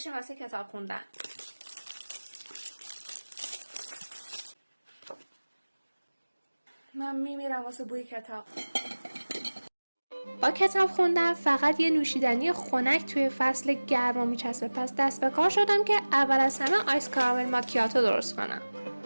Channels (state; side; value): inverted; both; correlation -1.00